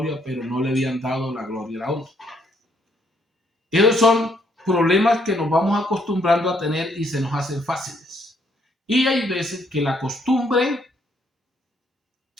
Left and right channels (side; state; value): both; normal; correlation 0.70